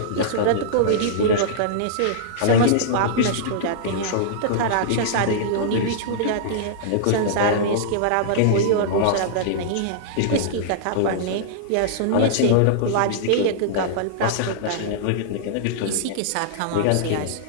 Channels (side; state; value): both; different; correlation -0.02